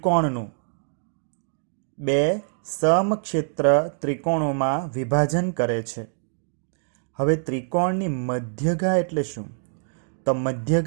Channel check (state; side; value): silent; left; digital silence